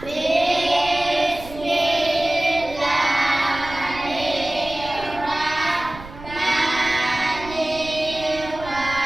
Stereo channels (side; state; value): right; noise; rumble, 15 dB below the sound